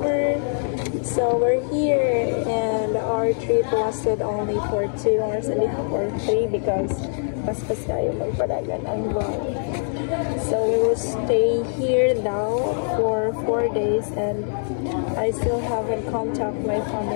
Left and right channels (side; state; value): right; silent; 63 dB below the other